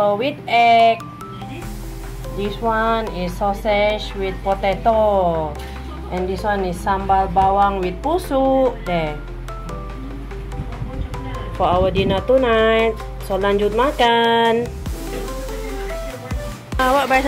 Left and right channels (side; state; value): both; identical; correlation 1.00